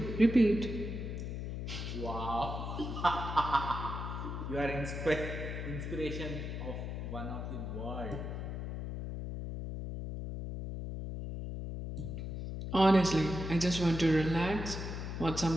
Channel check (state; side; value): noise; left; hum, 5 dB below the sound